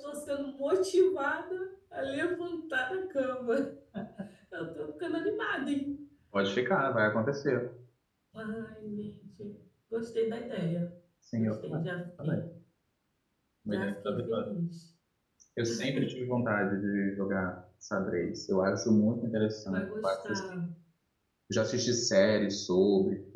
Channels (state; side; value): identical; both; correlation 1.00